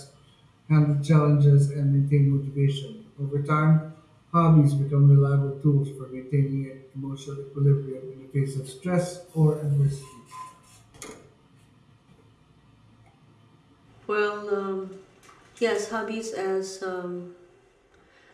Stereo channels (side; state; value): both; identical; correlation 1.00